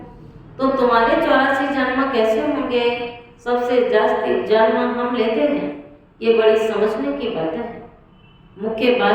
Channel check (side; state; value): both; identical; correlation 1.00